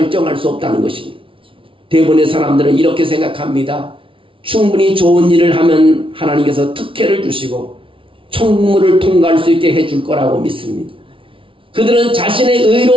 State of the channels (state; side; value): late; left; 0.25 ms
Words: 수 없다는 것입니다. 대부분의 사람들은 이렇게 생각합니다. 충분히 좋은 일을 하면 하나님께서 특혜를 주시고 천국문을 통과할 수 있게 해줄 거라고 믿습니다. 그들은 자신의